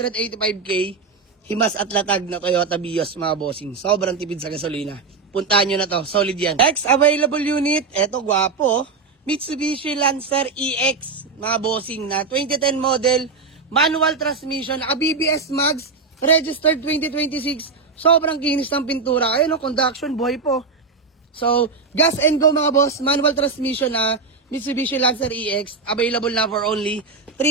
Himas at latag na Toyota Vios mga bossing. Sobrang tipid sa gasolina. Puntahan nyo na to, solid yan. Next available unit, eto gwapo. Mitsubishi Lancer EX mga bossing na 2010 model. manual transmission, naka BBS Mags, registered 2026, sobrang kinis ng pintura. Ayun, no, conduction, buhay po. So, gas and go mga boss, manual transmission na Mitsubishi Lancer EX, available na for only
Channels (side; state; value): left; quieter; 4.5 dB